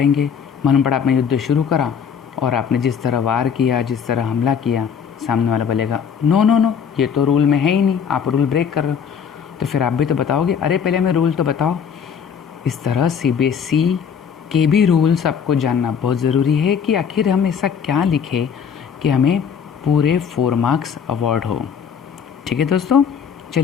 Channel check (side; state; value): right; quieter; 7.2 dB